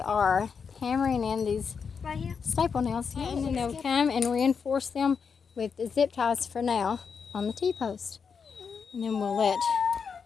hammering in these Right here. staple nails, and then they'll come and reinforce them with the zip ties for now on the T-post. And then we'll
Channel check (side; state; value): right; quieter; 6.0 dB